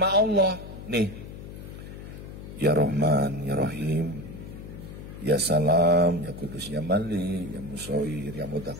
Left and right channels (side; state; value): left; noise; hum, 12 dB below the sound